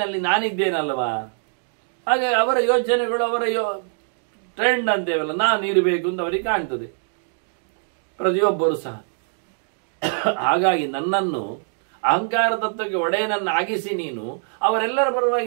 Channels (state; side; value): silent; left; digital silence